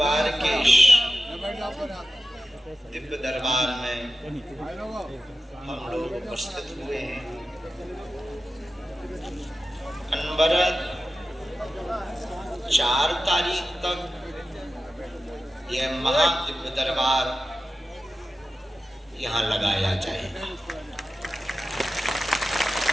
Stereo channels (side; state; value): both; normal; correlation 0.93